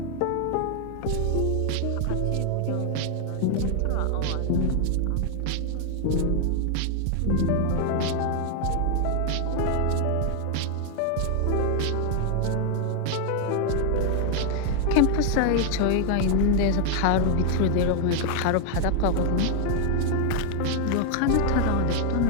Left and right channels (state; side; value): different; both; correlation 0.00